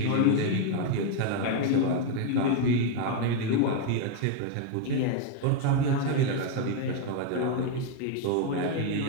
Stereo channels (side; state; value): both; different; correlation 0.01